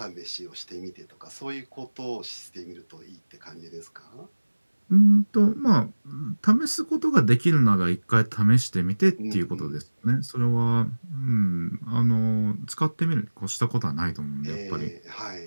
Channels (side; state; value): both; inverted; correlation -1.00